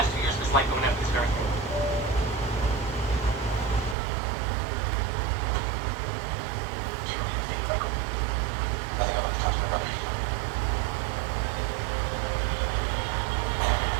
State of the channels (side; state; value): left; drops out; at 4.0 s